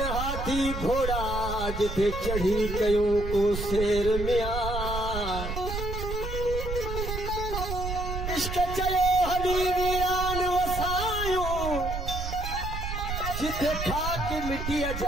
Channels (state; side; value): noise; right; rumble, 5 dB below the sound